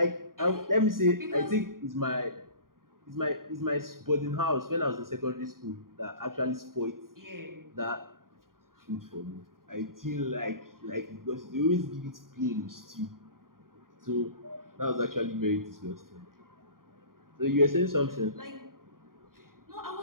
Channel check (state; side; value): late; left; 0.91 ms